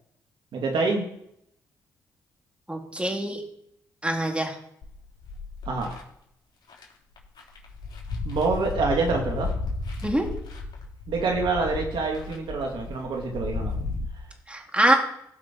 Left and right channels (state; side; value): normal; both; correlation 0.67